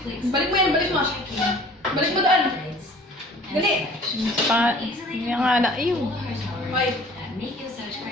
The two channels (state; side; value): normal; both; correlation 0.50